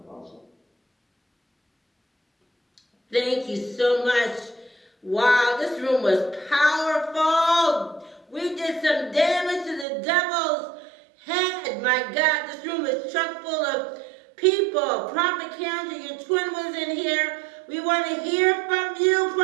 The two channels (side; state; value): left; drops out; at 9.9 s